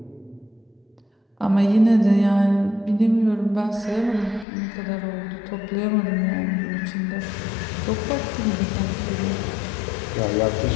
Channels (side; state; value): right; drops out; at 4.5 s